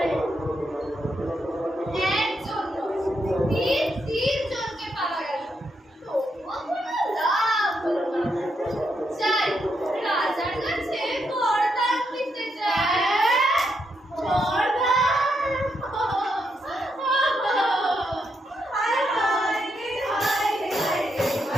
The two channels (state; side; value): normal; both; correlation 0.80